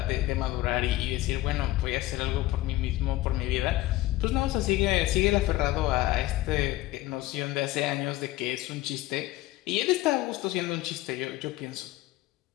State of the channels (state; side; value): quieter; right; 16.7 dB